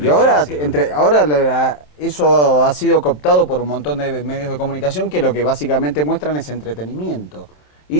ahora, eso ha sido cooptado por un montón de medios de comunicación que lo que básicamente muestran es entretenimiento.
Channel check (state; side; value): late; right; 27 ms